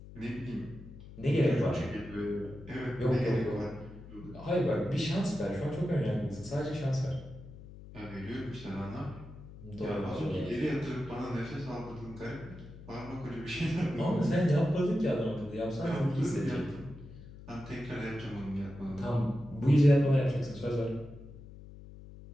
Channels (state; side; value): noise; left; hum, 16 dB below the sound